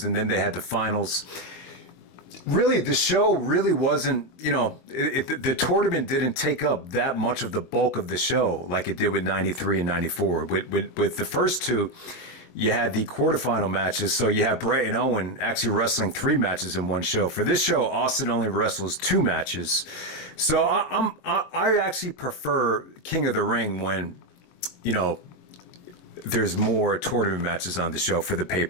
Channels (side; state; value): right; late; 22 ms